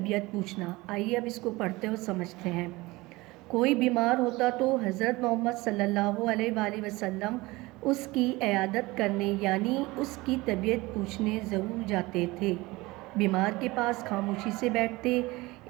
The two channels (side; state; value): left; quieter; 21.4 dB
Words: पूछना। आइए अब इसको पढ़ते और समझते हैं। कोई बीमार होता तो हज़रत मोहम्मद सल्लल्लाहु अलैहि वसल्लम उसकी इयादत करने यानी उसकी तबीयत पूछने ज़रूर जाते थे। बीमार के पास खामोशी से बैठते,